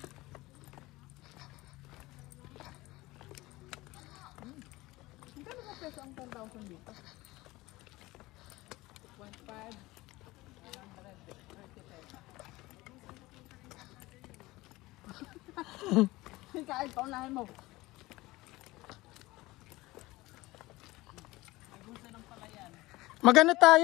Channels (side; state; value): right; quieter; 19.8 dB